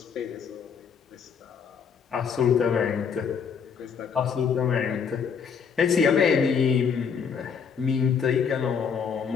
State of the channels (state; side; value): quieter; right; 6.6 dB